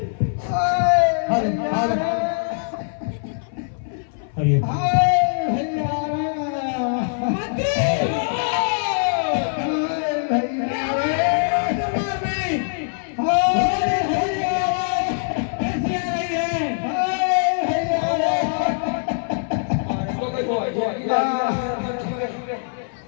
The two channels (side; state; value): right; silent; 59 dB below the other